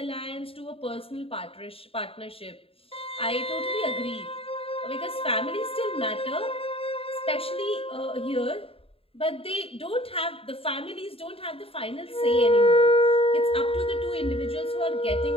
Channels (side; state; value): right; late; 0.27 ms